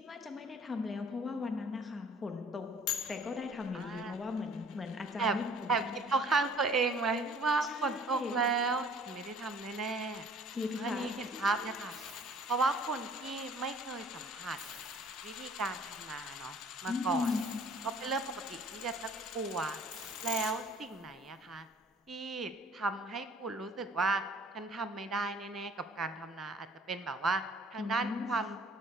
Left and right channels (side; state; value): both; normal; correlation 0.53